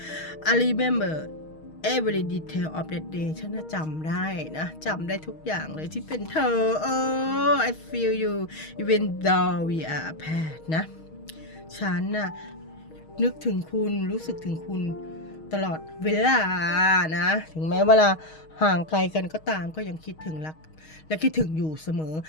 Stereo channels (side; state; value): right; late; 6.4 ms